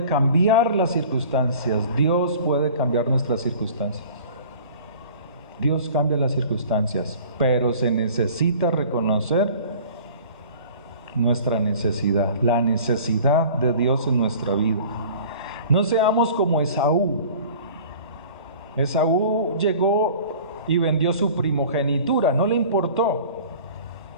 cambiar las circunstancias. Dios puede cambiar nuestras circunstancias. Dios cambia las circunstancias, pero se necesita reconocer nuestra necesidad, la necesidad de Dios en nuestra vida. No seamos como Esaú. Esaú llegó y vendió su primogenitura, no le importó.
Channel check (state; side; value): inverted; both; correlation -0.45